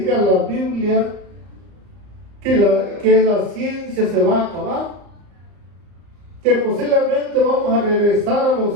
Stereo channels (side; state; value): left; late; 34 ms